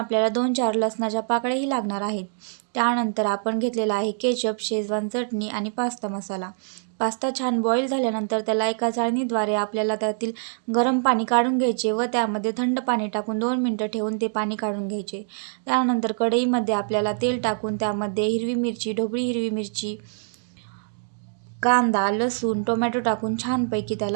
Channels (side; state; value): left; silent; digital silence